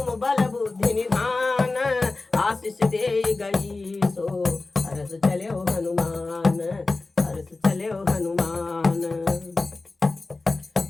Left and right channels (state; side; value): quieter; right; 3.5 dB